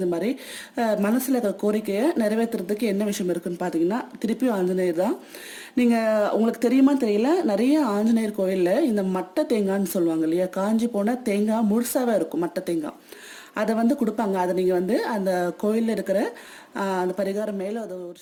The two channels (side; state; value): both; identical; correlation 1.00